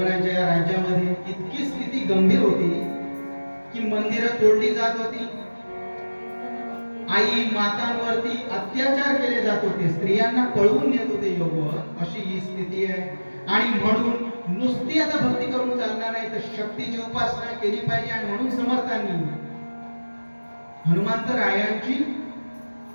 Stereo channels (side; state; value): both; inverted; correlation -1.00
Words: या राज्यामध्ये इतकी स्थिती गंभीर होती की मंदिरं तोडली जात होती, आई मातांवरती अत्याचार केले जात होते, स्त्रियांना पळवून नेत होते यौवन. अशी ही स्थिती आहे. आणि म्हणून नुसती आता भक्ती करून चालणार नाही, तर शक्तीची उपासना केली पाहिजे. आणि म्हणून समर्थांनी हनुमंतरायांची